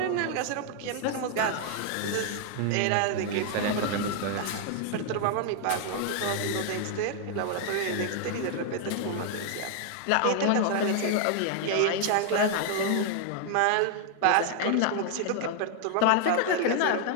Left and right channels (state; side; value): different; both; correlation 0.00